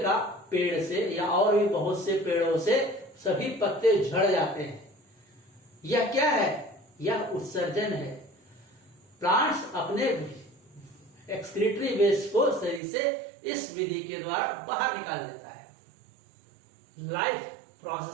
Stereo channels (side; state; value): left; drops out; at 12.8 s